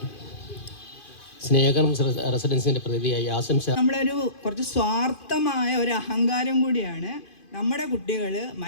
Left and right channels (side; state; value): right; late; 2.5 ms